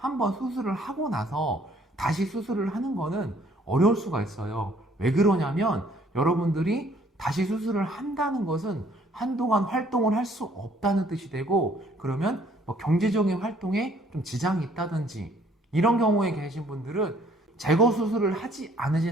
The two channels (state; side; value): normal; both; correlation 0.61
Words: 수술을 하고 나서 다시 수술을 하는 거는 어려울 수가 있어요. 왜 그러냐면 여러분들이 다시 수술을 한다는 것은 한동안 활동을 할 수 없다는 뜻이 되고, 그러면 경제적인 활동에 좀 지장이 있다든지 이런 경우에 계신 분들은 제거 수술을 하지